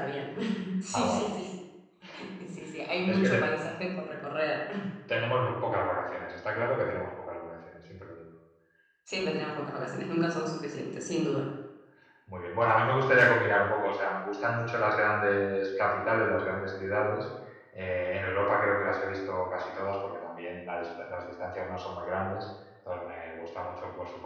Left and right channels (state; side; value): identical; both; correlation 1.00